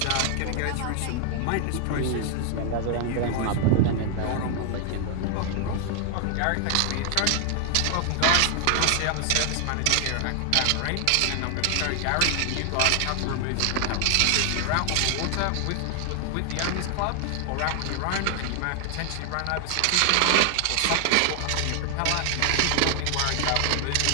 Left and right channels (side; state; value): both; different; correlation 0.00